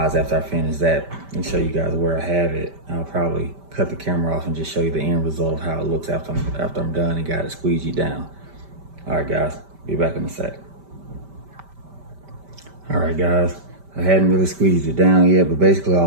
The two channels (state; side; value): late; left; 5.1 ms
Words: after I finish that and show you guys where I have it, I'll probably cut the camera off and just show you the end result of how it looks after I'm done and got it squeegee down. All right, guys, be back in a sec. All right, guys, I hadn't really squeezed it down yet, but basically